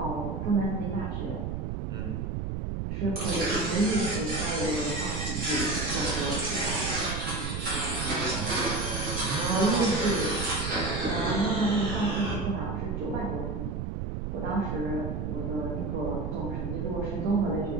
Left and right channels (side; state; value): right; noise; rumble, 3 dB below the sound